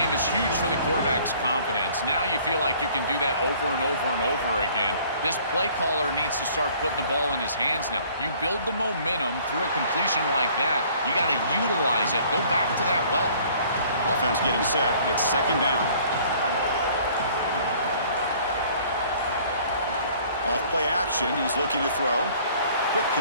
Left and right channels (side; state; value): both; inverted; correlation -0.55